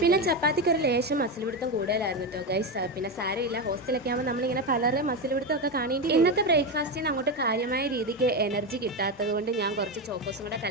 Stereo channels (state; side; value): normal; both; correlation 0.13